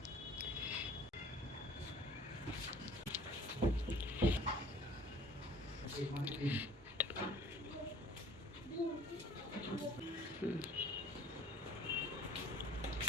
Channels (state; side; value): normal; both; correlation 0.49